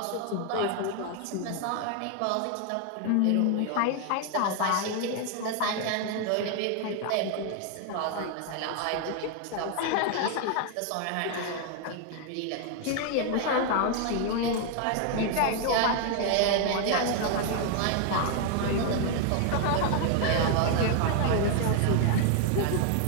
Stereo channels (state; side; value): different; both; correlation 0.01